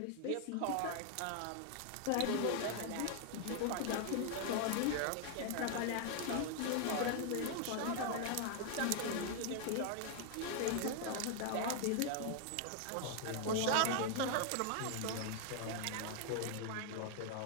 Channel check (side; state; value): both; different; correlation 0.00